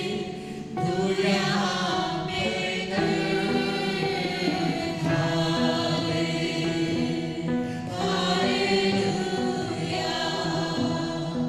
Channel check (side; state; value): both; identical; correlation 1.00